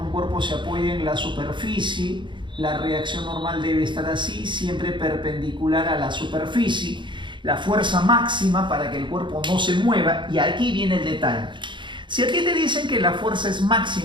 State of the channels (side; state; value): left; late; 0.23 ms